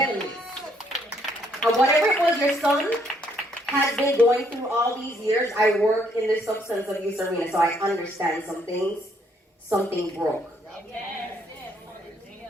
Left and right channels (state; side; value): normal; both; correlation 0.69